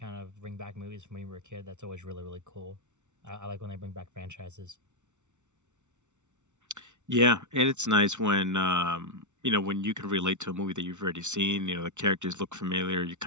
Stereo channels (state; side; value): late; left; 0.84 ms